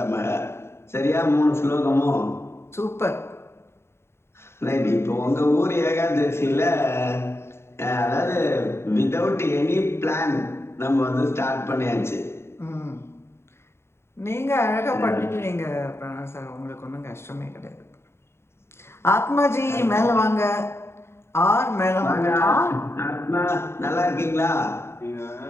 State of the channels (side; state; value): right; late; 0.12 ms